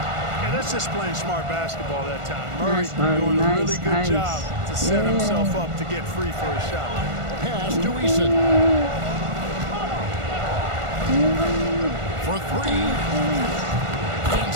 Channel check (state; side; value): late; left; 1.4 ms